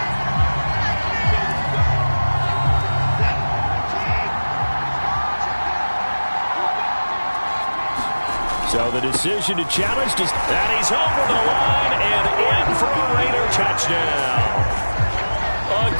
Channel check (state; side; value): inverted; both; correlation -1.00